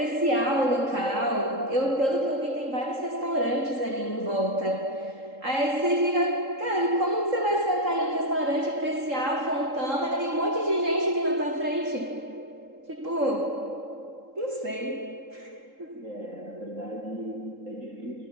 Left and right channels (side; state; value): left; late; 3.7 ms